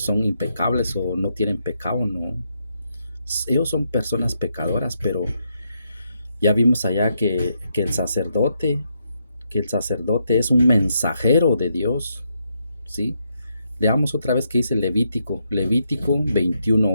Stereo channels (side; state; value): both; inverted; correlation -0.79